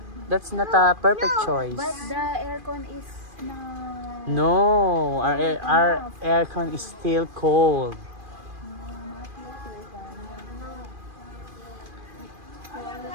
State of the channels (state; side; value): late; left; 2.4 ms